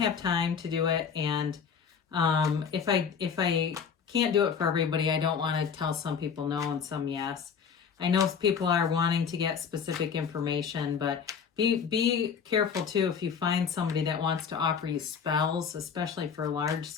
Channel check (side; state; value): right; quieter; 6.6 dB